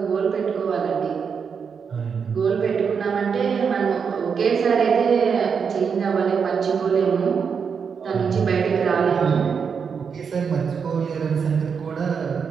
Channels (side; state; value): left; quieter; 6.3 dB